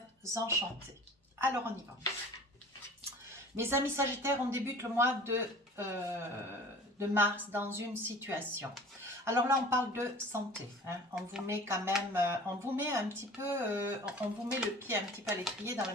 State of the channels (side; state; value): both; normal; correlation 0.43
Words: enchantés. Alors, on y va. Mes amis Sagittaires, on débute le mois de mars dans une situation. Alors là, on parle de santé. On vous met quand même, on vous met un petit peu, on vous met le pied un petit peu à l'étrier dans la